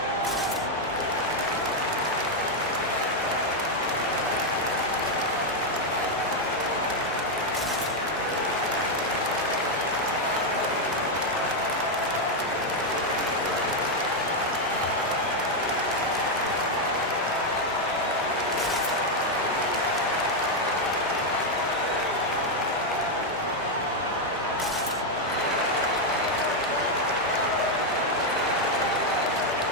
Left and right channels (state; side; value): normal; both; correlation 0.02